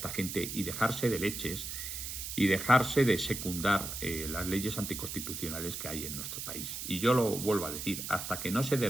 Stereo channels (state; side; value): noise; right; hiss, 6 dB below the sound